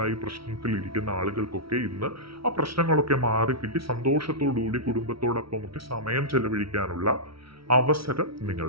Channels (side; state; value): left; late; 0.75 ms